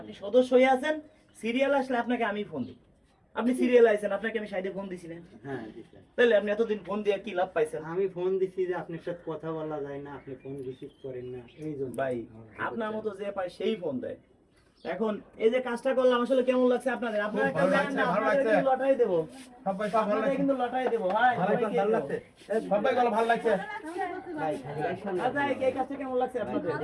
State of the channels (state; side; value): identical; both; correlation 1.00